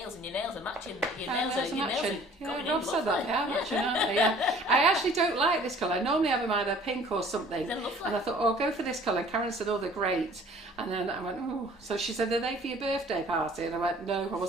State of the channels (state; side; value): normal; both; correlation 0.52